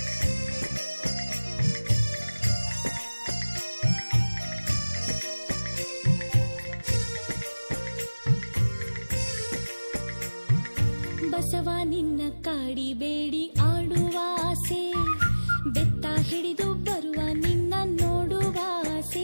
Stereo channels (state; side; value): inverted; both; correlation -1.00